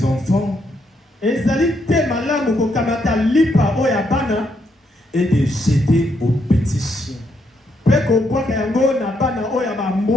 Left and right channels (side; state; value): both; normal; correlation 0.76